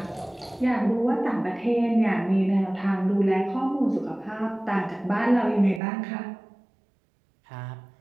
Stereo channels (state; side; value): drops out; left; at 5.8 s